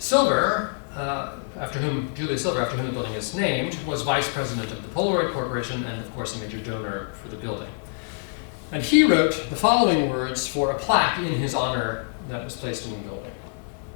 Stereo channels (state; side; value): silent; right; digital silence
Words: Julius Silver, after whom the building is named, was vice president of the Polaroid Corporation and of course a major donor for the building. And he wrote the following words for a plaque in his honor that was placed in the building.